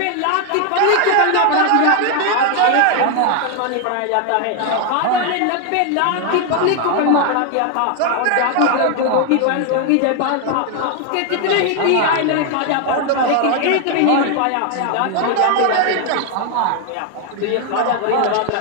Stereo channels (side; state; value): both; different; correlation 0.01